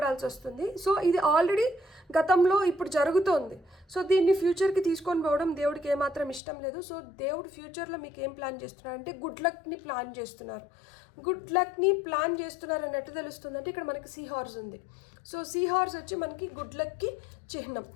వస్తుంది. సో ఇది ఆల్రెడీ గతంలో ఇప్పుడు జరుగుతోంది. సో దీన్ని ఫ్యూచర్కి తీసుకొని పోవడం దేవుడికి ఏమాత్రం ఇష్టం లేదు. సో దేవుడు ఫ్యూచర్లో మీకు ఏం ప్లాన్ చేస్తున్నారు అంటే గుడ్ లక్ని ప్లాన్ చేస్తున్నారు. గుడ్ లక్ని ప్లాన్ చేస్తున్నారు అని ఎట్లా తెలుస్తుంది అంటే ఇక్కడ మనకి సీ హార్స్ ఉంది. సో సీ హార్స్ వచ్చి మనకి గుడ్ లక్కి చిహ్నం.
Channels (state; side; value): drops out; right; at 6.4 s